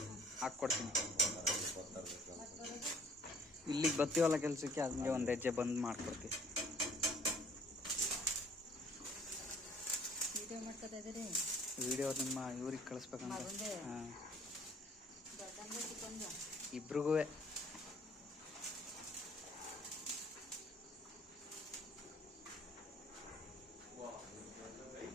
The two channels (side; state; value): both; normal; correlation 0.56